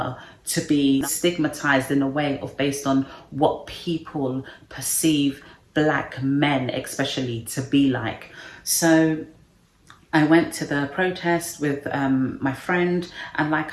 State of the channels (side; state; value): both; identical; correlation 1.00